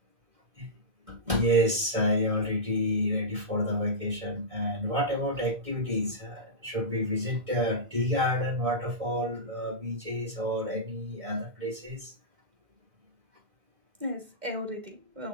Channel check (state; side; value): late; left; 1.6 ms